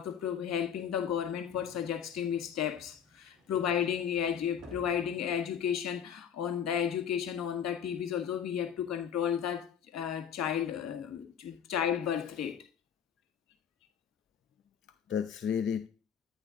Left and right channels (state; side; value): quieter; right; 8.5 dB